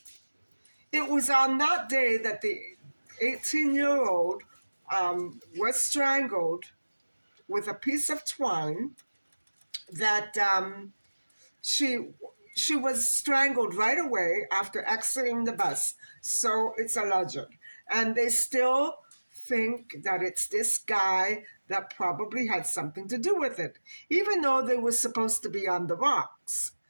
it was on that day that the 18-year-old was strangled with a piece of twine that she she was strangled right away after exiting the bus. So it's alleged. And they still think that it's this guy that probably had something to do with it, even though they were supposed to be on the rocks.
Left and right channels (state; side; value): inverted; both; correlation -1.00